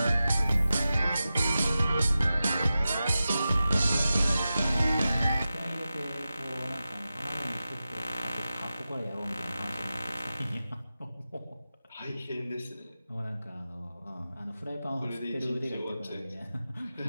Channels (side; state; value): both; inverted; correlation -0.93